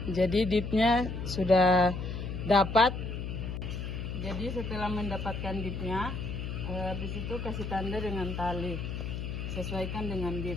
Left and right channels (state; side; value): noise; left; hum, 5 dB below the sound